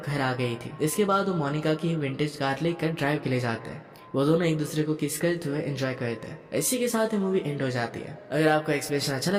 घर आ गई थी। इसके बाद वो मोनिका की विंटेज कार लेकर ड्राइव के लिए जाते हैं। वो दोनों एक दूसरे को किस करते हुए एंजॉय करते हैं। इसी के साथ ही मूवी एंड हो जाती है। अगर आपको एक्सप्लेनेशन अच्छा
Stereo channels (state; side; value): identical; both; correlation 1.00